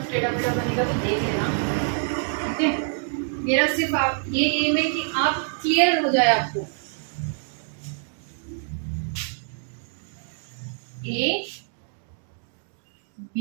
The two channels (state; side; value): silent; left; 61 dB below the other